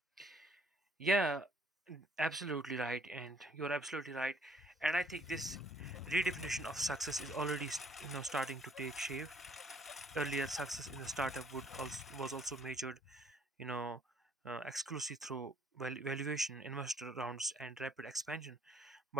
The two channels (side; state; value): both; normal; correlation 0.62